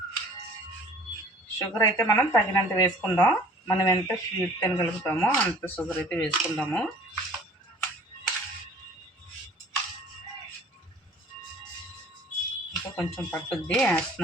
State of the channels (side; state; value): both; normal; correlation 0.50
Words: షుగర్ అయితే మనం తగినంత వేసుకుందాం. మనం ఎంత స్వీట్ తినగలుగుతామో అంత షుగర్ అయితే వేసుకుందాము. ఇంకా కొంచెం పట్టుద్ది